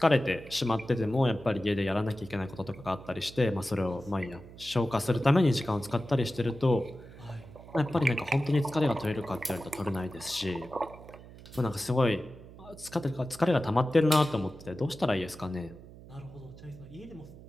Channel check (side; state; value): right; noise; hum, 18 dB below the sound